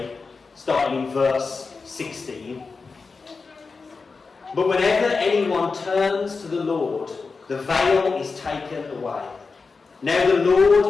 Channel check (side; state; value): right; quieter; 4.5 dB